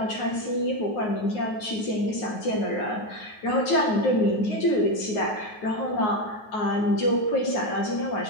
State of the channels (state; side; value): late; right; 9.4 ms